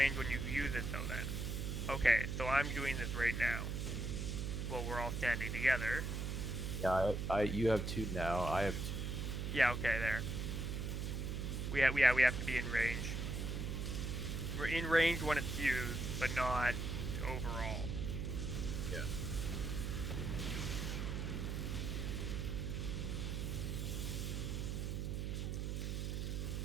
when you use it, though, then. Okay, so I'm doing this right now. Well, we're all standing together. Yeah, you have 2 now. I have 2. Yeah, okay, there. We have to be in range. We're in range when it's used, but not overall. Yeah.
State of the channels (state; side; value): noise; right; hum, 2 dB below the sound